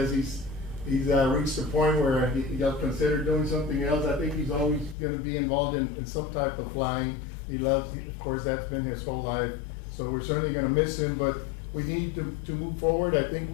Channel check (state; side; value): drops out; right; at 5.0 s